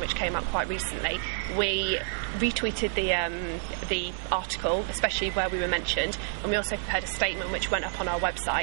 came out quite recently, we retweeted the article, especially where we were mentioned, and we also prepared a statement which went up on our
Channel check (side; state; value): left; silent; 59 dB below the other